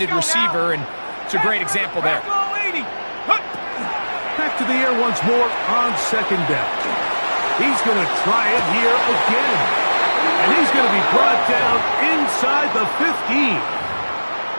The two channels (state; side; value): inverted; both; correlation -1.00